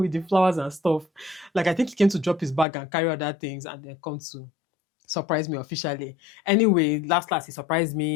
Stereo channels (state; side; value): drops out; right; at 2.7 s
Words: the flowers and stuff. Like I think he came to drop his bag and carry other things and then come to surprise me officially. Anyway, last he surprised